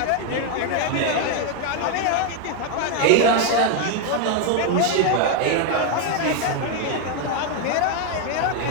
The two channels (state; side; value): different; both; correlation 0.01